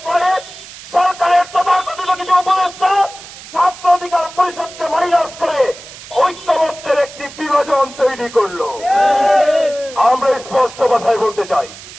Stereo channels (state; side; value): noise; right; hiss, 16 dB below the sound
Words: পরে সরকারের তথাকথিত কিছু উপদেষ্টা ছাত্র অধিকার পরিষদকে মাইনাস করে ঐক্যমত্যের একটি বিভাজন তৈরি করলো। আমরা স্পষ্ট ভাষায় বলতে চাই,